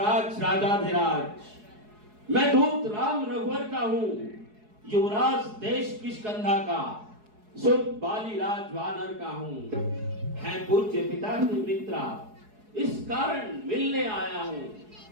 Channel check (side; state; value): left; late; 4.7 ms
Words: राजाधिराज, मैं दूत राम रघुवर का हूँ, युवराज देश किष्किंधा का, सुत बाली राज वानर का हूँ। है पूज्य पिता के मित्रा, इस कारण मिलने आया हूँ।